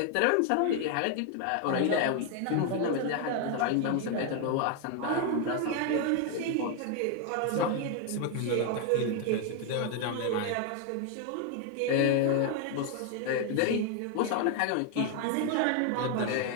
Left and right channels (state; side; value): different; both; correlation 0.01